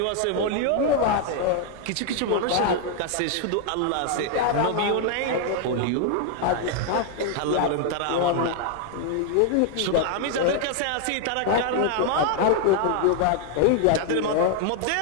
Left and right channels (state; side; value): different; both; correlation 0.00